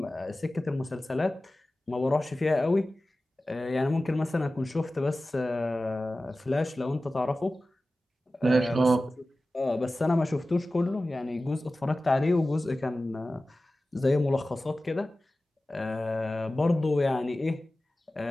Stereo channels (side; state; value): both; normal; correlation 0.96